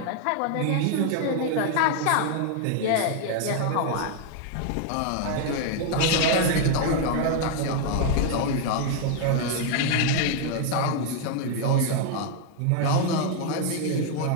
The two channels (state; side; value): different; both; correlation 0.00